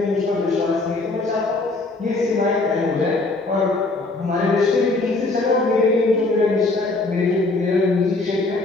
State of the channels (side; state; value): right; quieter; 3.3 dB